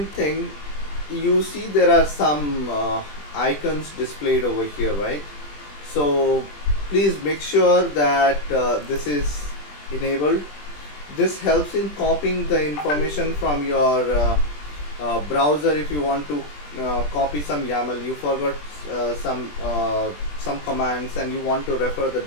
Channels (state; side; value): late; right; 20 ms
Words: thing, you see there are some icons displayed over here, right? So please make sure that this is enabled. This helps in copying the information from your browser. If you want to copy some YAML, you forgot some commands and you want to refer the